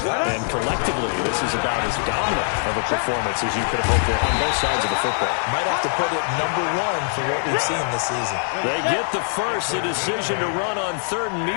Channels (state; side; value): silent; right; digital silence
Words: And collectively, this is about as dominant of a performance as you could have hoped for on both sides of the football. Might have to put it number 1 for what we've seen this season. They get the first. The decision to run on 3rd and